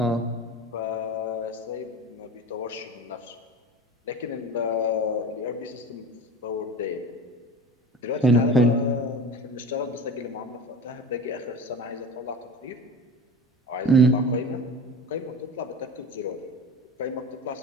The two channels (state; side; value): normal; both; correlation 0.33